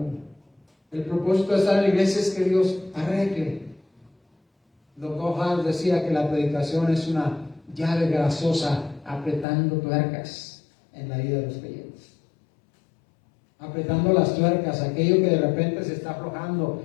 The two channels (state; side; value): drops out; right; at 9.5 s